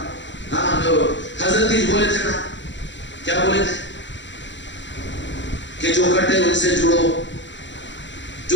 ہاں جو حضرت ہی بولے تھے نا، کیا بولے تھے کہ جو کٹے ان سے جڑو،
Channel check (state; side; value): late; right; 0.53 ms